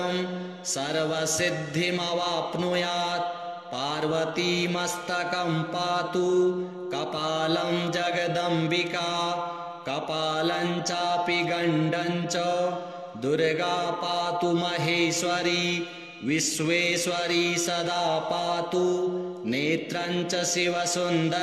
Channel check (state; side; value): identical; both; correlation 1.00